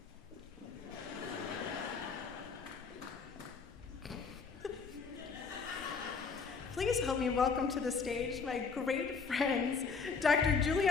Please help me welcome to the stage my great friends, Dr.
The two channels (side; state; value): right; quieter; 5.2 dB